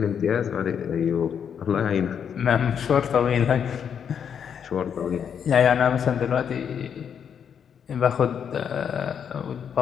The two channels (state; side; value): quieter; right; 7.8 dB